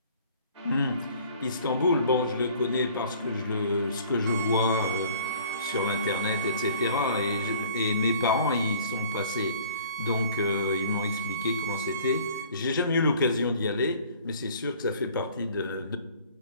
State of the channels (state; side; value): inverted; both; correlation -0.52